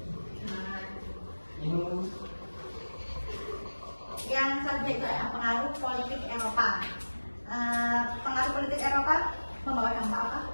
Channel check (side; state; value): both; inverted; correlation -1.00